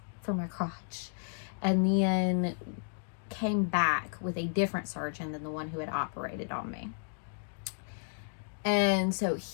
for my crotch and then came back with a different surgeon than the one who had operated on me. And so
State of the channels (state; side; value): silent; right; digital silence